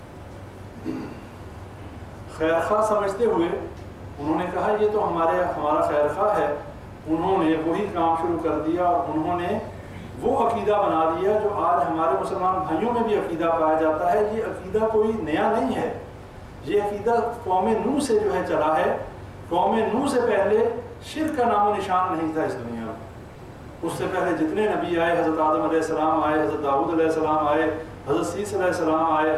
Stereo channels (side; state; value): both; identical; correlation 1.00